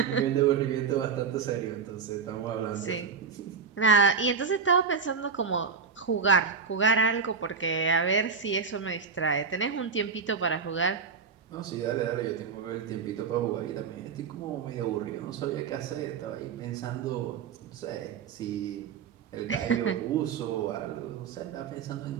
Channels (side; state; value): left; quieter; 5.7 dB